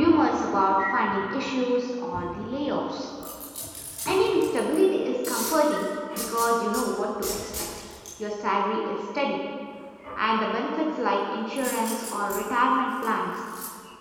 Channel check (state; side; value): identical; both; correlation 1.00